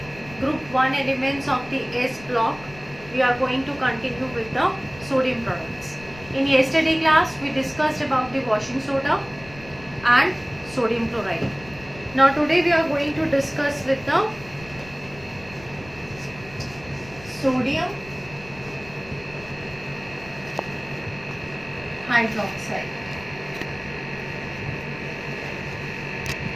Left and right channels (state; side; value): noise; left; rumble, 19 dB below the sound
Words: group 1 elements of the S block, we are going to continue with the sodium products. In yesterday class, we discussed about the washing soda and sodium chloride. Now today we are going to discuss with the sodium hydroxide.